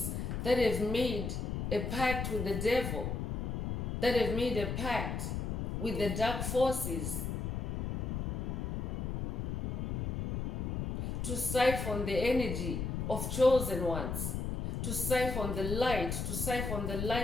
that have made a pact with the devil, that have made a pact with the dark forces to siphon the energy of chosen ones, to siphon the light, to siphon the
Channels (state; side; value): noise; left; rumble, 2 dB below the sound